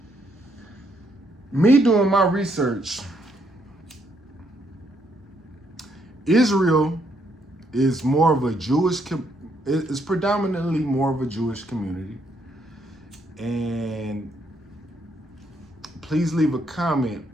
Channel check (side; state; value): both; normal; correlation 0.73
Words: Me doing my research, Israel is more of a it's predominantly more of a Jewish community. And please leave a comment.